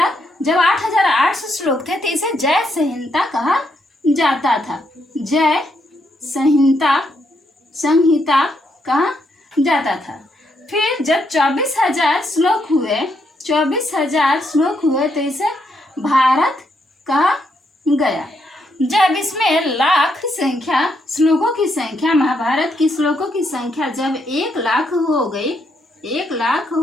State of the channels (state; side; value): normal; both; correlation 0.77